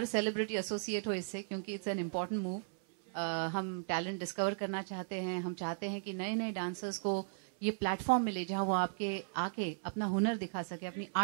सेलिब्रिटी एसोसिएट हो इससे, क्योंकि इट्स एन इम्पोर्टेंट मूव. हम टैलेंट डिस्कवर करना चाहते हैं, हम चाहते हैं कि नए डांसर्स को ये प्लेटफॉर्म मिले जहां वो आके अपना हुनर दिखा सके, अपनी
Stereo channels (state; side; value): silent; left; 53 dB below the other